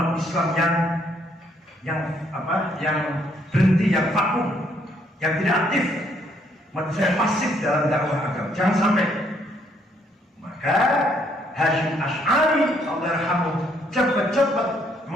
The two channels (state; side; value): normal; both; correlation 0.69